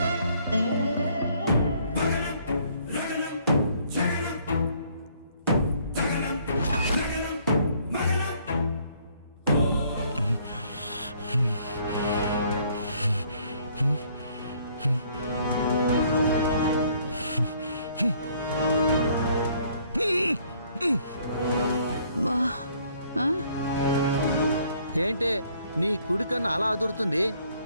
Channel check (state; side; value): inverted; both; correlation -0.63